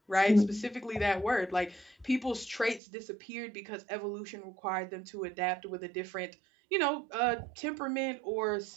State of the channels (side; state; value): left; drops out; at 2.8 s